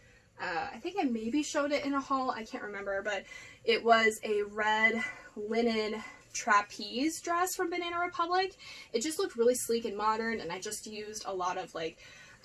I think I maybe showed it in a haul, I can't remember, but it was a red linen trapeze dress from Banana Republic. It just looked really sleek and modern, and I just used a lot of like,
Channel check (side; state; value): both; identical; correlation 1.00